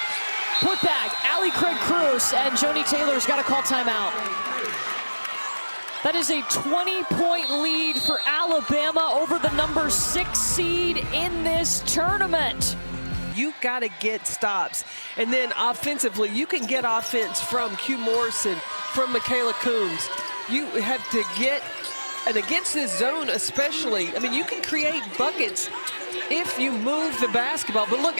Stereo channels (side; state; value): both; inverted; correlation -1.00